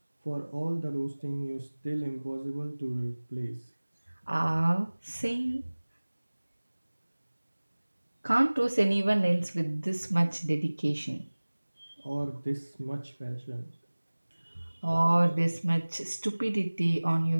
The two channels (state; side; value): inverted; both; correlation -1.00